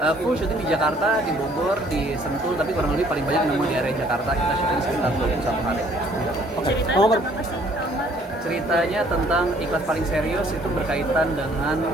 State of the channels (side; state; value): both; normal; correlation 0.60